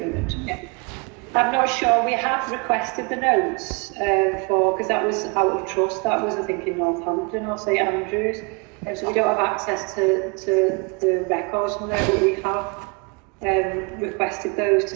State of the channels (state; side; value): quieter; left; 31.0 dB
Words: Yeah. I'm not sure. We have requested the notes because that was out of trust. That was, I think, in Northampton or St Andrews. So we don't have access to the records from there, but we have requested those to